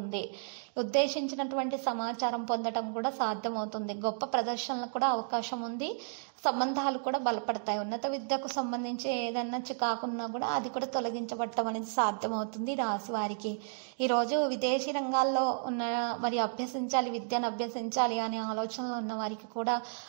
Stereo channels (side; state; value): left; silent; digital silence